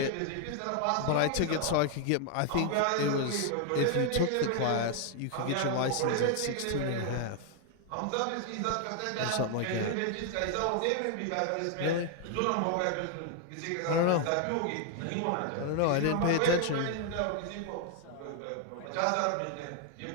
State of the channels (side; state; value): both; different; correlation 0.00